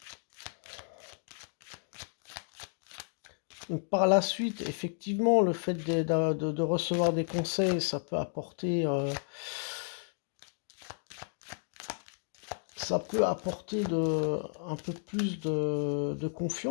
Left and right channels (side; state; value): right; silent; 56 dB below the other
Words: Donc, par la suite, effectivement, le fait de recevoir des conseils, ça peut apporter un peu plus de